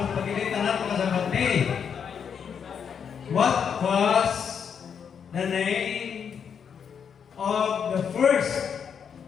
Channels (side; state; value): right; quieter; 7.3 dB